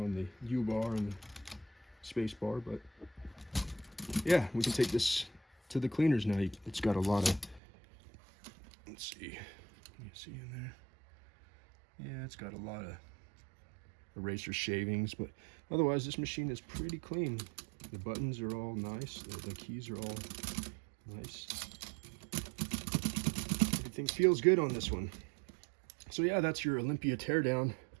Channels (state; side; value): drops out; left; at 7.6 s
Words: on the U-bar and the space bar, but yeah, we can take this to the cleaners now. It's got a lot of, let's see, can you see in there? Yeah, it's got a lot of eraser shavings, but otherwise this machine is pretty clean. The buttons are all nice, the keys are all nice. Everything feels good on this one. So yeah, that's your Olympia teardown.